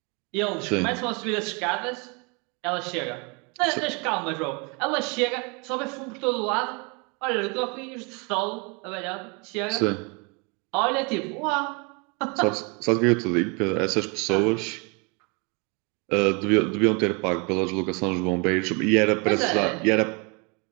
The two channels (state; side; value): quieter; left; 31.5 dB